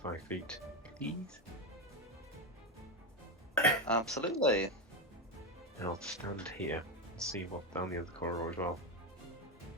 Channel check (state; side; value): normal; both; correlation 0.12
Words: feet, please. Absolutely. And I'll stand here and see what's down the other corridor as well.